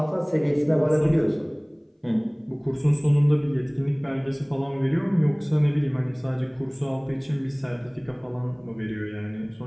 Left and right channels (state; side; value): identical; both; correlation 1.00